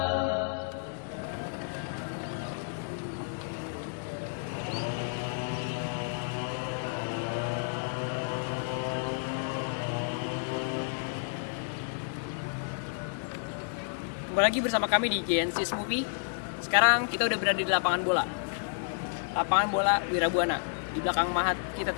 Kembali lagi bersama kami di Genesis Movie. Sekarang kita udah berada di lapangan bola. Lapangan bola Wirabuana di belakang Mahat kita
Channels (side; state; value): right; silent; 57 dB below the other